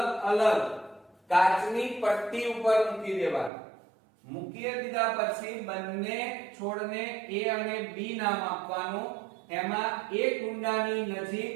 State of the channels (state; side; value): drops out; left; at 3.5 s